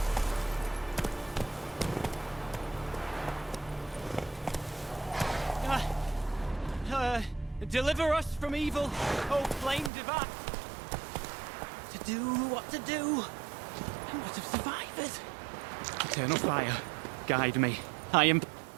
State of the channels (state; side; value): drops out; left; at 9.9 s